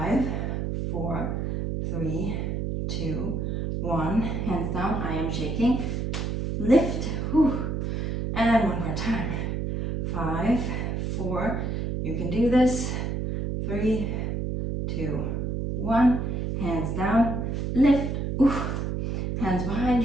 4, 3, 2, 1. Hands down, I am shaking. Lift. Whew. And one more time. 5, 4, you can do this. 3, 2, 1. Hands down, lift, oof. Hands behind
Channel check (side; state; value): right; noise; hum, 1 dB below the sound